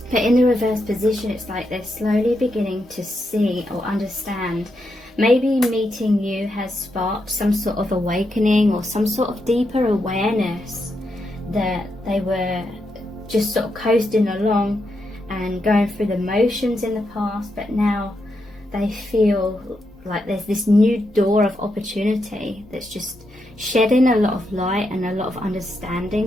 But in the reverse position, it's like they're slowly beginning to see or understand. Maybe meeting you has sparked some sort of awakening or some sort of deeper awareness that they were just sort of coasting along and going through the motions in the past, but now they feel like there's this new door of opportunity that's just shedding a lot of light and a lot of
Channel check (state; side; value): normal; both; correlation 0.83